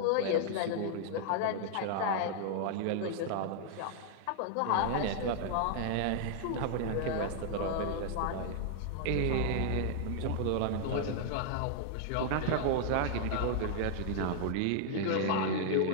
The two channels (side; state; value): both; different; correlation -0.01